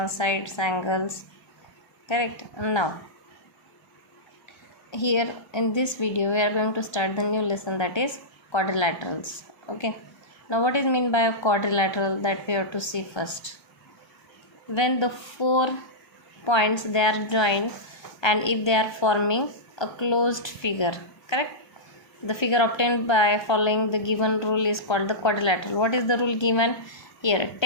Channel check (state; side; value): late; right; 1.3 ms